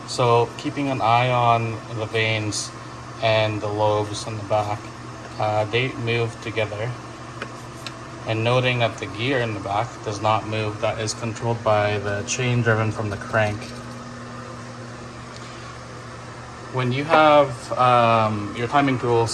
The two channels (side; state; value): both; identical; correlation 1.00